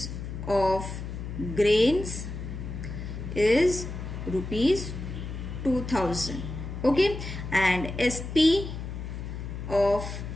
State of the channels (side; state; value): left; noise; hum, 7 dB below the sound